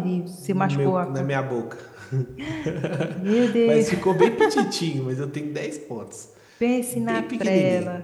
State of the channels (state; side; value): identical; both; correlation 1.00